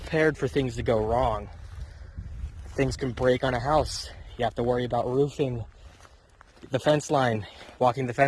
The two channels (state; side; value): identical; both; correlation 1.00